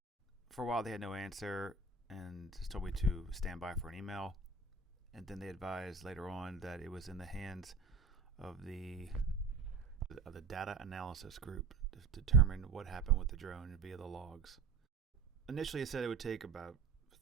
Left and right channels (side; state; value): left; quieter; 4.2 dB